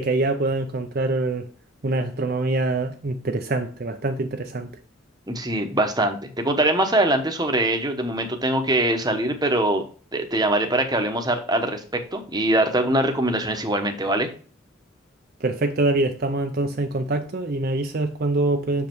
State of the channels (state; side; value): normal; both; correlation 0.38